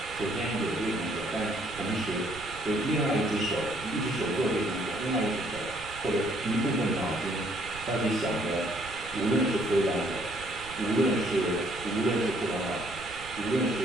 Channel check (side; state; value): right; noise; rumble, 16 dB below the sound